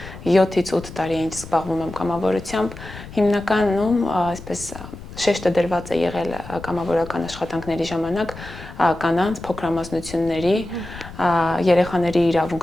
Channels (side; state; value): left; noise; rumble, 14 dB below the sound